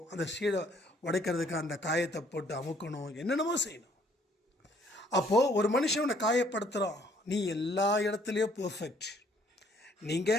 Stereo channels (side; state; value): both; normal; correlation 0.63